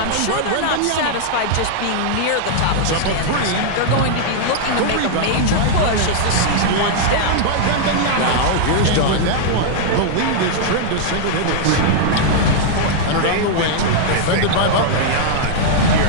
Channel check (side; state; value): both; different; correlation -0.01